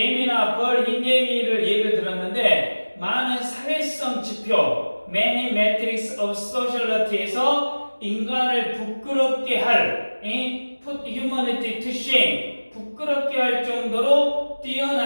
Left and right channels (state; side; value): inverted; both; correlation -1.00